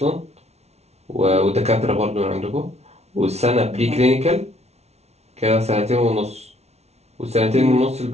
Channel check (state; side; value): late; left; 0.31 ms